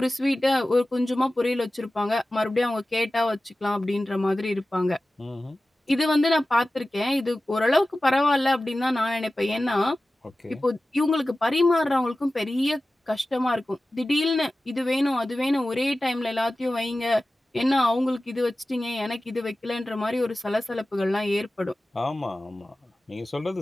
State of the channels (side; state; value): both; normal; correlation 0.96